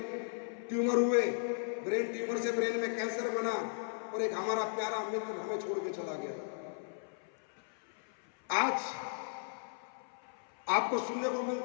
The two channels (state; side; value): silent; right; 54 dB below the other